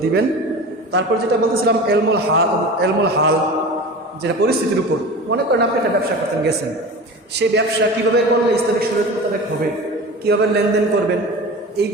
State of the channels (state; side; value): normal; both; correlation 0.33